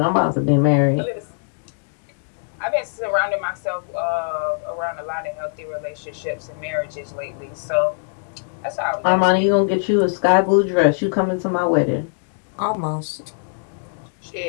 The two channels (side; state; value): right; silent; digital silence